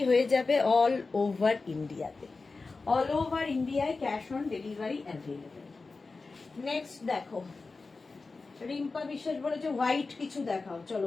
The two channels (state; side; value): quieter; right; 4.0 dB